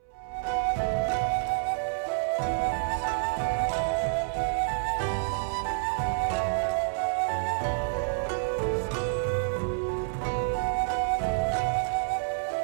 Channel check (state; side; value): silent; left; 59 dB below the other